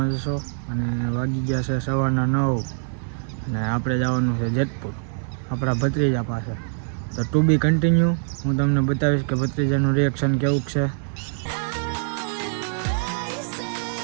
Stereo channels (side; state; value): left; silent; digital silence